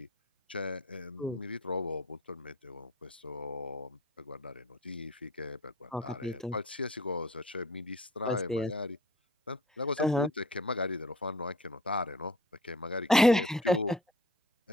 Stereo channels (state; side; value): normal; both; correlation 0.47